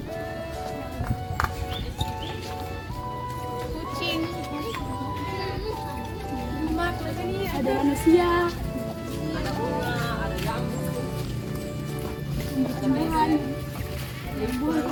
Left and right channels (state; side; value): identical; both; correlation 1.00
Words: Kucing. Ada manusia. Tumbuhan.